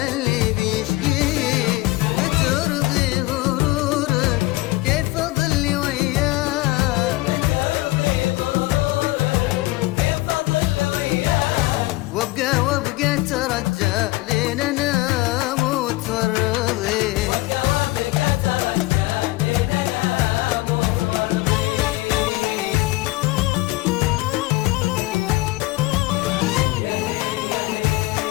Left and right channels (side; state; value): right; quieter; 20.2 dB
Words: اللي بيشقيك بترضي غرورك كيف اضل وياك وابقى ترجى لين انام وتورضي